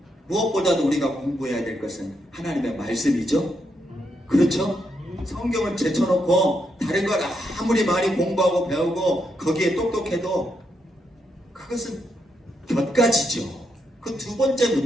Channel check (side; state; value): both; normal; correlation 0.80